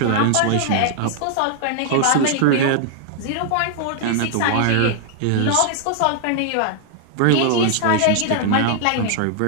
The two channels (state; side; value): different; both; correlation 0.00